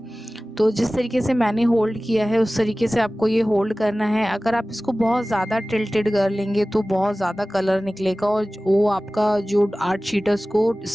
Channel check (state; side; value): normal; both; correlation 0.97